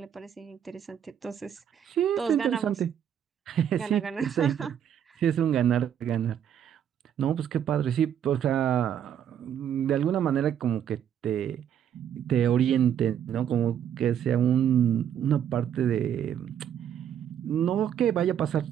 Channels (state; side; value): quieter; left; 9.3 dB